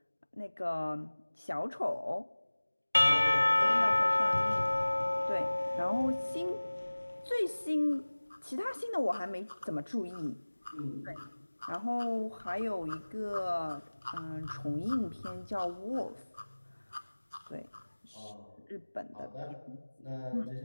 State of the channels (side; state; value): both; inverted; correlation -1.00